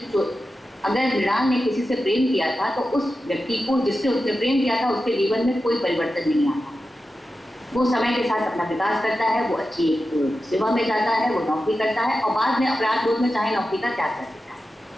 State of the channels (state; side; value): normal; both; correlation 0.92